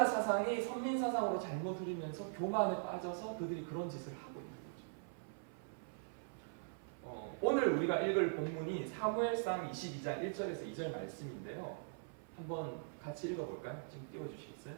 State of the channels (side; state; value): left; silent; 50 dB below the other